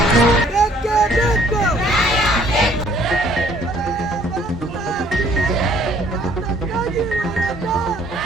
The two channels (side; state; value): both; normal; correlation 0.60